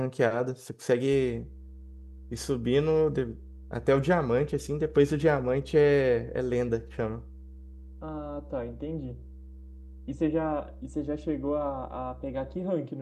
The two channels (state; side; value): identical; both; correlation 1.00